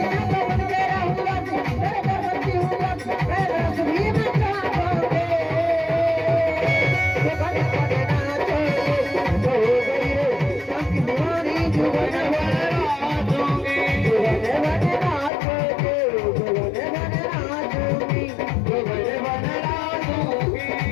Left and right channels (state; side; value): drops out; right; at 15.3 s